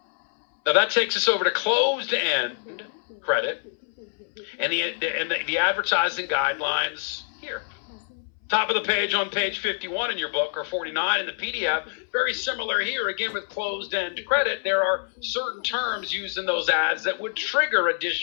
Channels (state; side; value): silent; right; 61 dB below the other